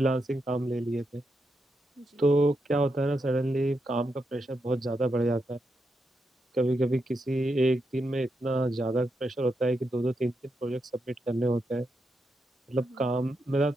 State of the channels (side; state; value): both; normal; correlation 0.84